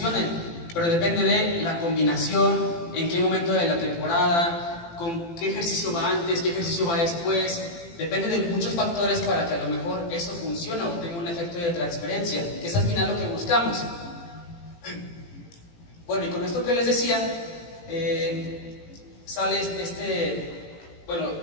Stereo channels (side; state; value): right; late; 18 ms